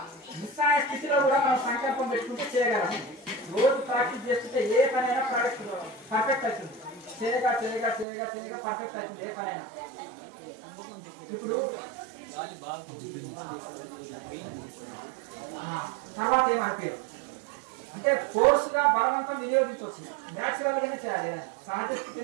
నిస్సాయ స్థితిలో కూడా మనం సంకల్పం పెట్టుకుంటే చేయగలము. రోజు ప్రాక్టీస్ చేస్తుంటే ఏ పనైనా పర్ఫెక్ట్ అవుతుంది. చేయగా చేయగా చేయగా చేయగా పర్ఫెక్ట్ అవుతుంది ఏ పనైనా. ఇప్పుడు తర్వాత ఏమనిపించదు అంటే కోర్సుగా బలవంతం వినియోగించవచ్చు. న్యాచురల్ గానే చేయాలి, సహజ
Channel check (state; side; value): drops out; left; at 8.1 s